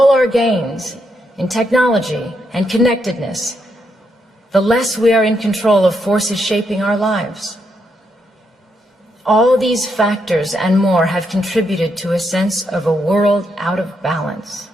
our gains in technology and connectedness, the less we are in control of forces shaping our lives. All these factors and more have contributed to a sense of a world out of balance.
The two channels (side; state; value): both; normal; correlation 0.79